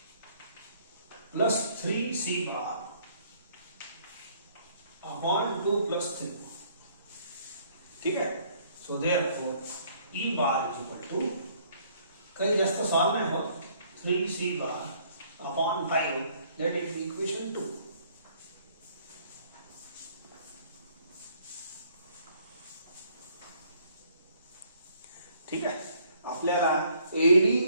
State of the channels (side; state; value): both; inverted; correlation -0.62